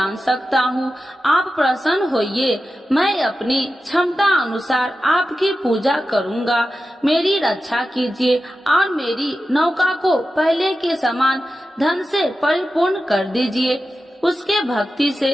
सकता हूँ। आप प्रसन्न होइए, मैं अपनी क्षमता अनुसार आपकी पूजा करूँगा। मेरी रक्षा कीजिए और मेरी नौका को पहले के समान धन से परिपूर्ण कर दीजिए। उसके भक्ति से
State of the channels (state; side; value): normal; both; correlation 0.92